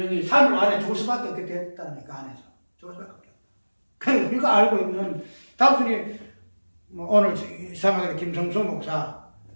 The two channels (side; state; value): both; inverted; correlation -1.00